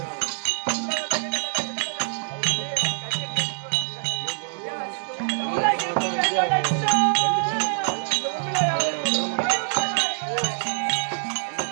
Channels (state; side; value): silent; left; digital silence